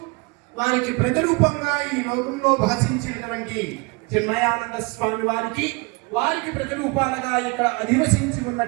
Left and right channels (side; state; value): left; quieter; 27.8 dB